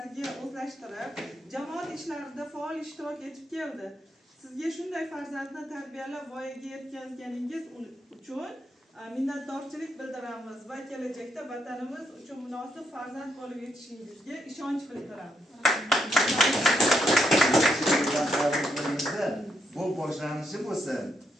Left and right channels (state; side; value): normal; both; correlation 0.78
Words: o'zlashtirib, jamoat ishlarida faol ishtirok etib keldi. Sizga shunday farzandni tarbiyalab voyaga yetkazganingiz uchun minnatdorchilik bildiramiz va kelajakda vatanimiz uchun munosib farzand bo'lib yetishingizga ishonch bildiramiz. Bu boshlanishi bo'lsin.